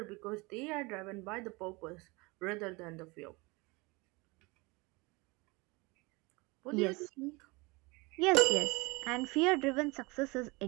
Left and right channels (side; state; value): left; quieter; 25.5 dB